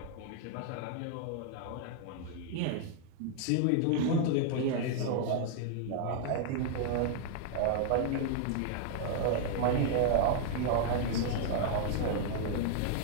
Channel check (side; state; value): both; different; correlation 0.00